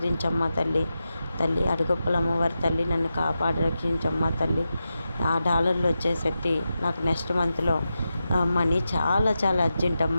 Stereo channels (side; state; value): both; inverted; correlation -0.90